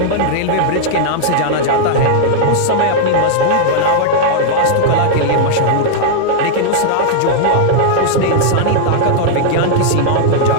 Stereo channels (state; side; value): different; both; correlation -0.01